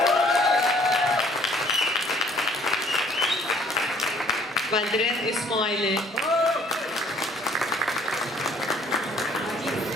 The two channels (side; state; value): both; normal; correlation 0.59